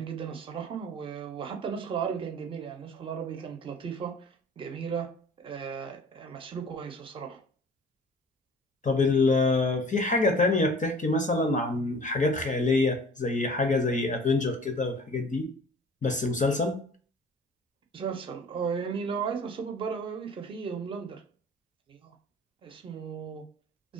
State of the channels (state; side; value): normal; both; correlation 0.47